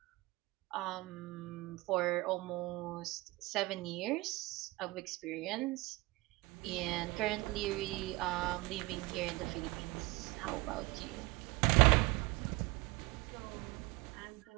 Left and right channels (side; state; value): left; quieter; 22.1 dB